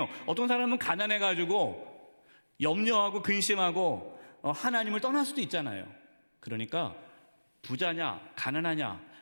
어떤 사람은 가난해가지고 염려하고 근심하고 하나님을 떠날 수도 있잖아요. 그러니까 부자냐 가난하냐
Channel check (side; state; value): both; inverted; correlation -1.00